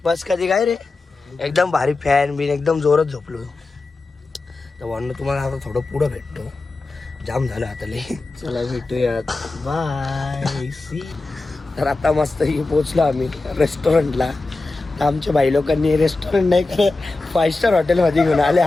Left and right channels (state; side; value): quieter; right; 3.4 dB